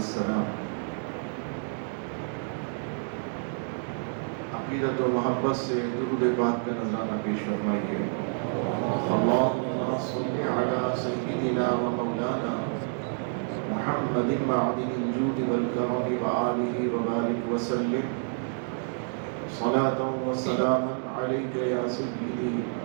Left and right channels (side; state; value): left; silent; 59 dB below the other